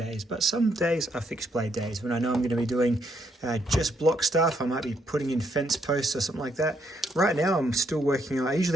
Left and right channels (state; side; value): normal; both; correlation 0.74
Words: but some days are fixed blade days. When I know I'm going to be doing just block stuff, I might be putting in fence posts or something like that. Right now I'm still working on, I